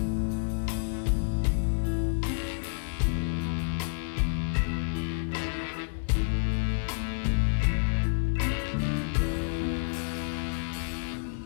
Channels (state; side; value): silent; right; 56 dB below the other